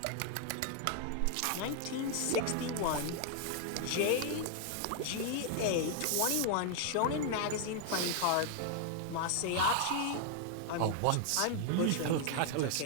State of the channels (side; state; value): both; different; correlation 0.00